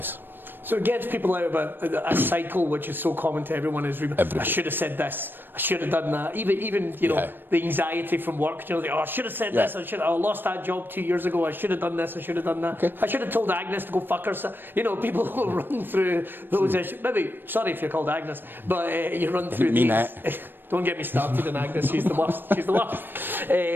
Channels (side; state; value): left; late; 0.096 ms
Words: So it gets people out of a cycle which is so common to everyone. Is I should have said this, I should have done that. Even you know, the anxiety from work. You know, I should have said this. I lost that job 2 years ago. I should have done this. I should have done that. I should have told Agnes to go fuck herself. You know, people will run through those issues. Maybe sorry if you're called Agnes, but you run through these. Don't get me started on Agnes. She's the worst. She's the worst.